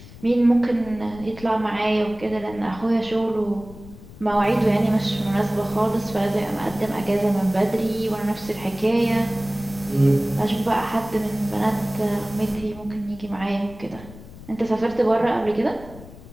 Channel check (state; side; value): noise; left; rumble, 18 dB below the sound